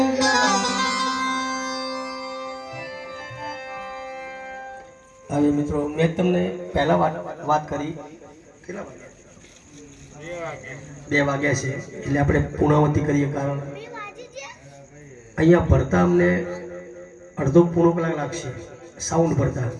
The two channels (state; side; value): identical; both; correlation 1.00